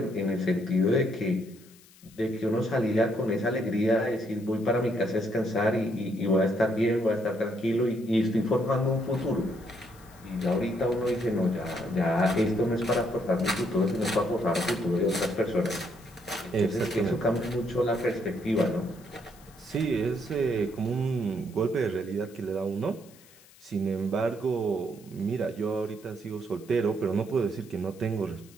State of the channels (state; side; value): noise; left; hiss, 25 dB below the sound